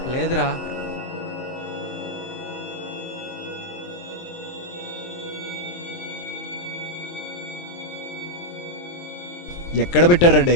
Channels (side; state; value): right; late; 23 ms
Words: లేదురా. ఎక్కడ పెట్టారా